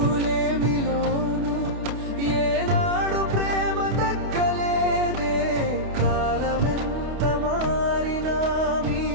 లేమిలోను ఏనాడు ప్రేమ తగ్గలేదే. కాలమెంత మారినా మీ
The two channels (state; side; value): late; left; 28 ms